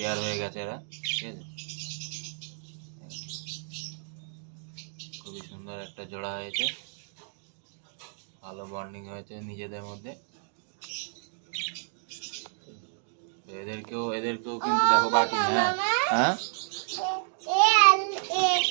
হয়ে গেছে এরা, ঠিক আছে। খুবই সুন্দর একটা জোড়া হয়েছে, ভালো বন্ডিং হয়েছে নিজেদের মধ্যে। তো এদেরকেও কিন্তু দেখো বাটি, হ্যাঁ হ্যাঁ।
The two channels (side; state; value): left; silent; 58 dB below the other